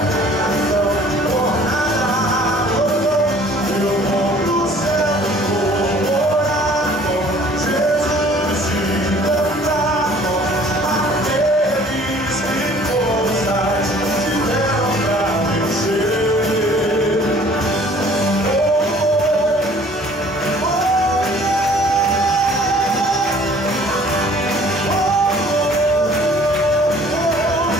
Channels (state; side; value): normal; both; correlation 0.53